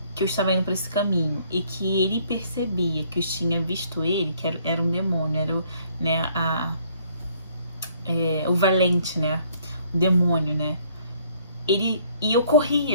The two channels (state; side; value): inverted; both; correlation -0.63